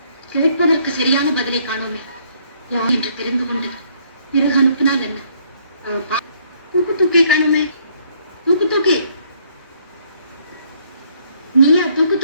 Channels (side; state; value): both; inverted; correlation -0.66